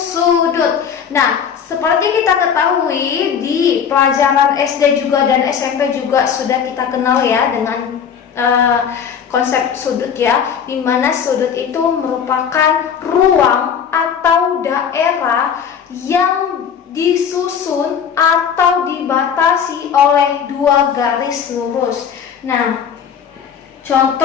Nah, seperti kita ketahui di pelajaran SD juga dan SMP juga sudah kita kenal ya dengan konsep sudut ya, di mana sudut itu merupakan ruang atau daerah yang disusun atau dibatasi oleh dua garis lurus. Nah,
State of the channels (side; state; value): right; quieter; 7.5 dB